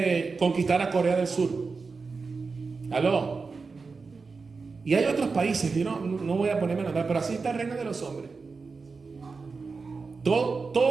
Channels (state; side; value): quieter; left; 4.5 dB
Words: conquistar a Corea del Sur. ¿Aló? Y hay otros países, yo no voy a ponerme a nombrar, pero así está el reino de los hombres.